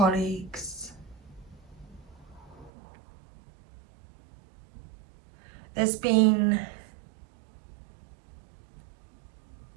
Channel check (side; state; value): left; drops out; at 2.7 s